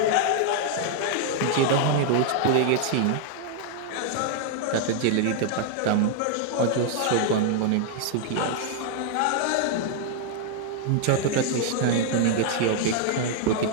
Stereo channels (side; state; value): both; different; correlation 0.00